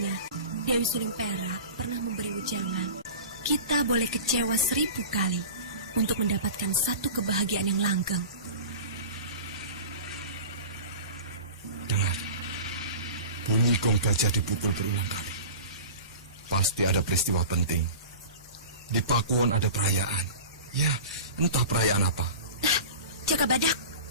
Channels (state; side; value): inverted; both; correlation -0.35